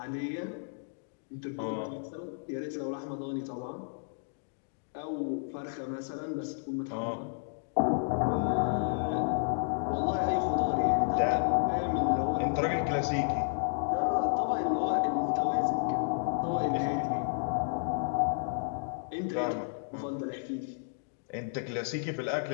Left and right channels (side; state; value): right; silent; digital silence